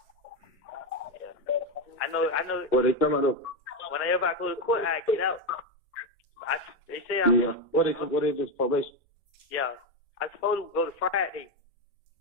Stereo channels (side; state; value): both; normal; correlation 0.10